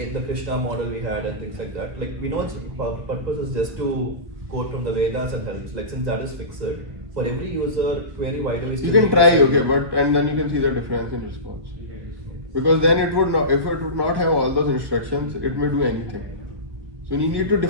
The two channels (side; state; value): left; late; 1.2 ms